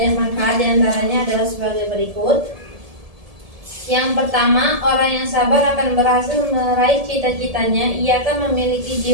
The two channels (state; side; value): late; left; 1.7 ms